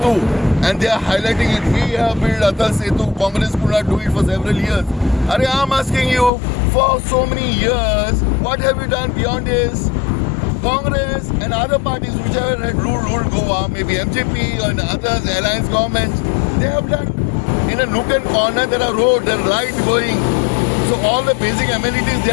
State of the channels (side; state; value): right; drops out; at 6.3 s